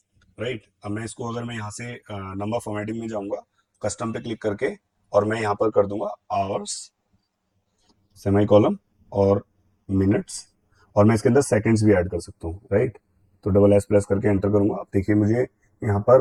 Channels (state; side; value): identical; both; correlation 1.00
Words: राइट। अब मैं इसको, अगर मैं यहाँ से नंबर फॉर्मेटिंग में जाऊंगा, कस्टम पे क्लिक करके, और मैं यहाँ पर कर दूंगा आवर्स सेमी कॉलम और मिनट्स, और मैं इसके अंदर सेकंड्स भी ऐड कर सकता हूँ, राइट। तो डबल एस प्रेस करके एंटर करूंगा, अब देखिए मुझे यहाँ